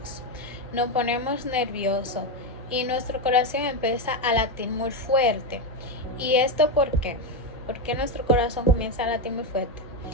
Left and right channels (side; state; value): both; normal; correlation 0.09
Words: Nos ponemos nerviosos y nuestro corazón empieza a latir muy fuerte. ¿Y esto por qué? ¿Por qué nuestro corazón comienza a latir muy fuerte?